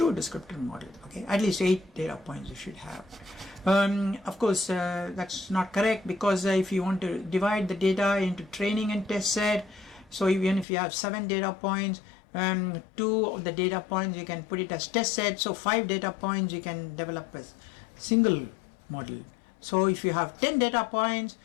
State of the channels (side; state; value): right; drops out; at 10.7 s